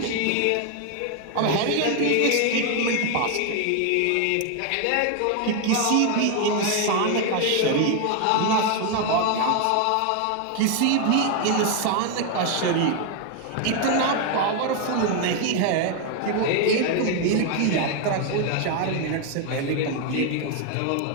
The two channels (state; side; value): different; both; correlation 0.01